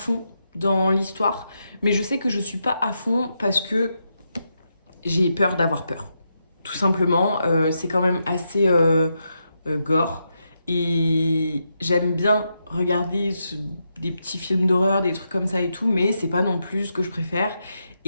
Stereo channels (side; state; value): both; inverted; correlation -0.84